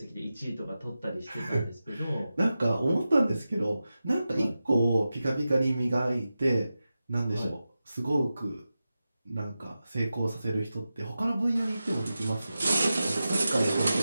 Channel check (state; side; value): inverted; both; correlation -0.93